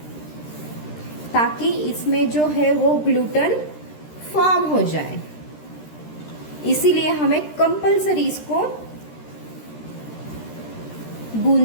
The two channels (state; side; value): late; right; 13 ms